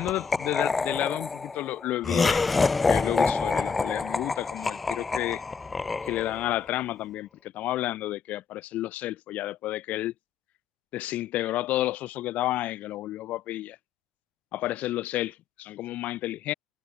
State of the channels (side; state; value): right; quieter; 6.8 dB